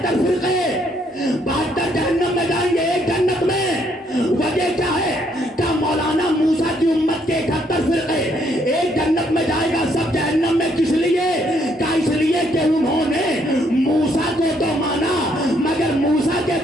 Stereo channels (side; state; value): both; normal; correlation 0.70